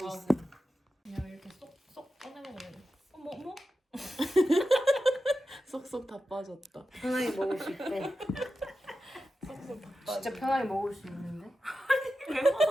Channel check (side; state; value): both; normal; correlation 0.91